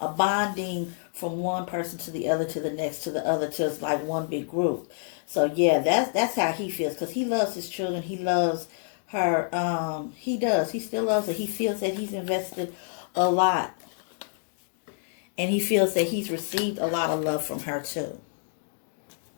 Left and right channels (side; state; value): right; silent; digital silence